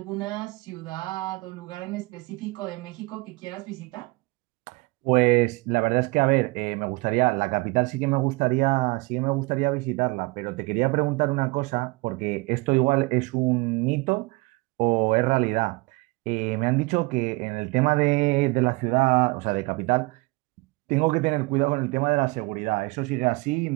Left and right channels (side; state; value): left; quieter; 24.9 dB